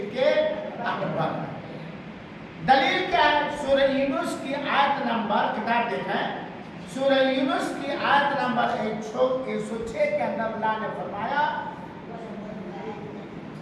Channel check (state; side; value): identical; both; correlation 1.00